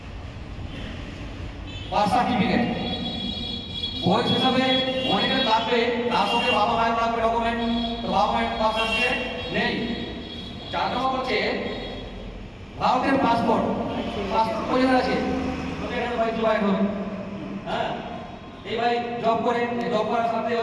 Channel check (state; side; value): identical; both; correlation 1.00